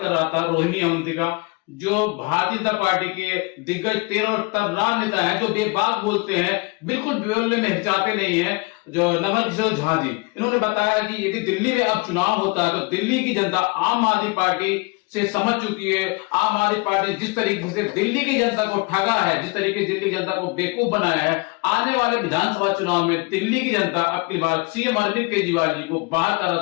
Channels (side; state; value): right; quieter; 27.4 dB